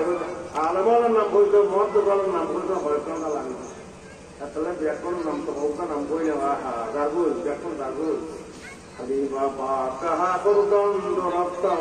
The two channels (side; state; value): both; identical; correlation 1.00